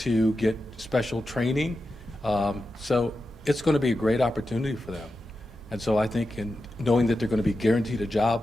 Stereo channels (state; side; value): normal; both; correlation 0.90